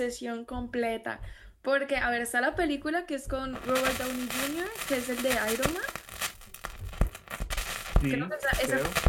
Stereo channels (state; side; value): identical; both; correlation 1.00